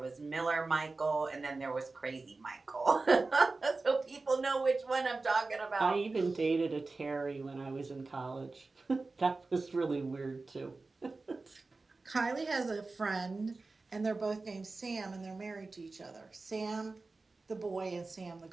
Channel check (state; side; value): quieter; left; 3.6 dB